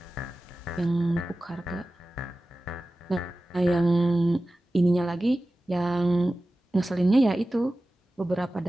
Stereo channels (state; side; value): normal; both; correlation 0.95